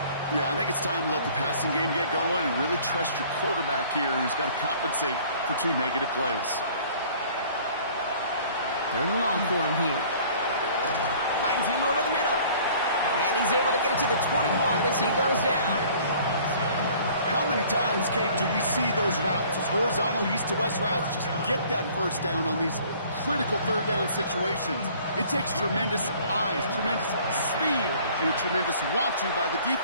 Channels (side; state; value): both; inverted; correlation -0.53